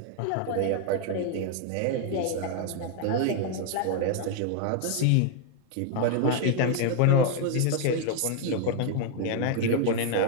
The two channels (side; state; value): both; different; correlation 0.00